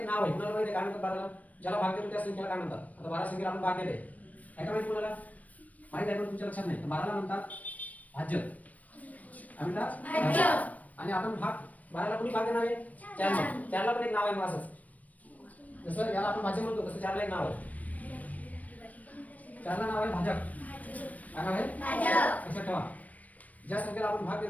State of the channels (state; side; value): late; right; 0.072 ms